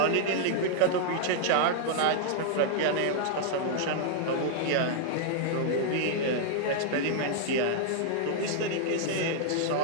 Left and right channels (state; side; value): different; both; correlation 0.00